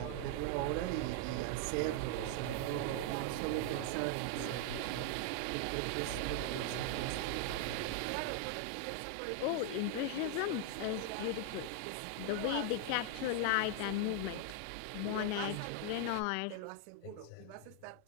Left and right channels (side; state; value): both; different; correlation 0.00